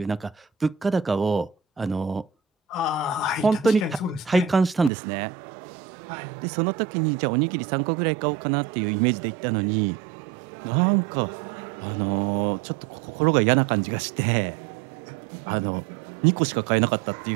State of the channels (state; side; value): drops out; left; at 4.9 s